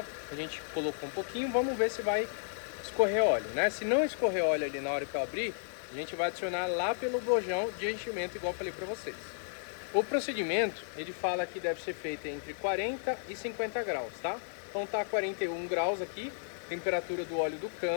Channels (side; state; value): right; silent; digital silence